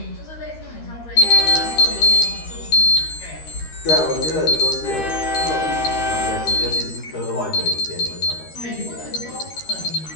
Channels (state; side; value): late; right; 13 ms